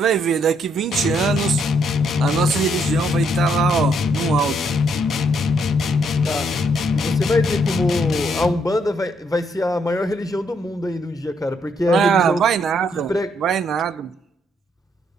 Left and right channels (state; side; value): normal; both; correlation 0.73